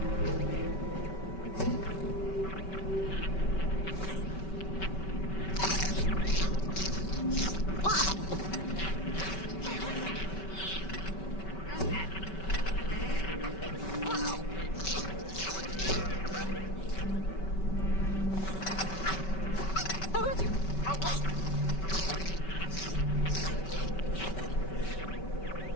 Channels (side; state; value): right; late; 5.2 ms